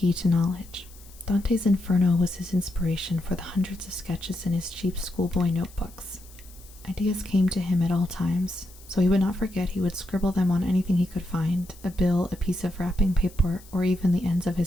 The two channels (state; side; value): noise; left; hiss, 23 dB below the sound